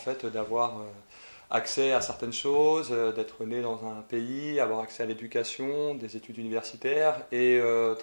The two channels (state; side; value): inverted; both; correlation -1.00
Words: d'avoir accès à certaines choses, d'être né dans un pays, avoir accès à l'éducation, des études universitaires, et